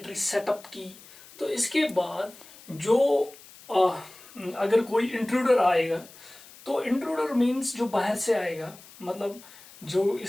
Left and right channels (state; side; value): noise; left; hiss, 21 dB below the sound